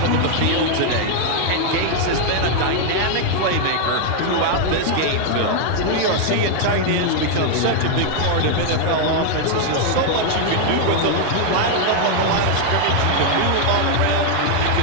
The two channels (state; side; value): different; both; correlation 0.00